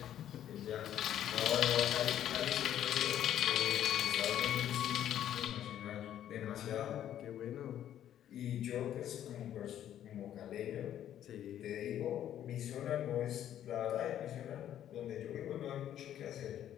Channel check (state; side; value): quieter; right; 11.0 dB